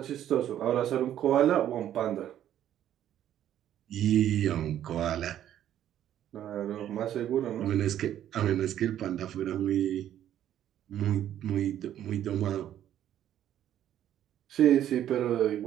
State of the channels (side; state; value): left; quieter; 11.2 dB